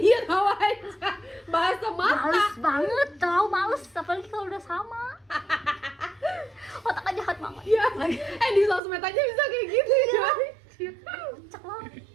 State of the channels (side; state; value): left; drops out; at 8.8 s